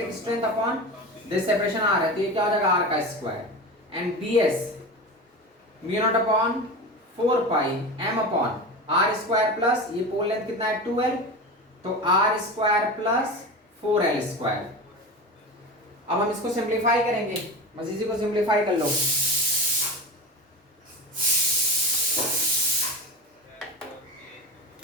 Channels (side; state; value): both; normal; correlation 0.27